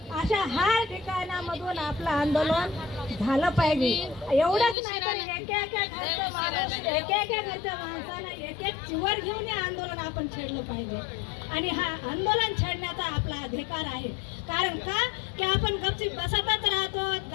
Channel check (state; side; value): drops out; right; at 4.8 s